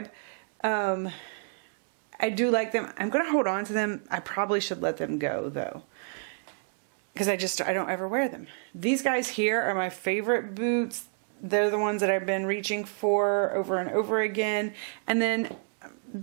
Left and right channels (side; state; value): left; silent; 57 dB below the other